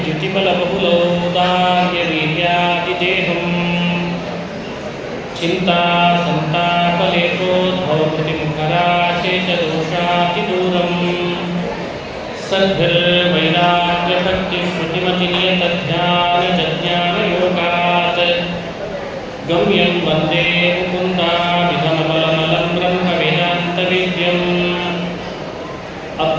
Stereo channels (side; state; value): both; identical; correlation 1.00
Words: ಚಿಂತಾ ಸಂತಾಪಲೇಪೋದ್ಭವಕೃತಿಮುಖರಾಶೇಷದೋಷಾತಿದೂರಂ ಸದ್ಭಿರ್ವೈರಾಗ್ಯಭಕ್ತಿಶ್ರುತಿಮತಿನಿಯತಧ್ಯಾನಜಜ್ಞಾನಯೋಗಾತ್ ಗಮ್ಯಂ ವಂದೇ ಮುಕುಂದಾಮಿಧಮಬಲಮಲಂ ಬ್ರಹ್ಮವೇದಾन्तವೇದ್ಯಂ